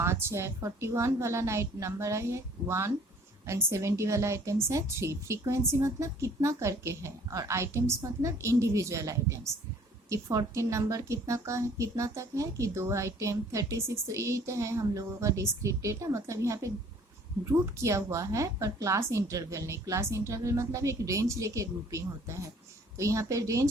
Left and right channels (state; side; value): normal; both; correlation 0.55